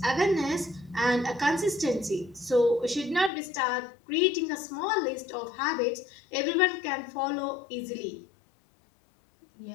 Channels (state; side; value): drops out; right; at 3.3 s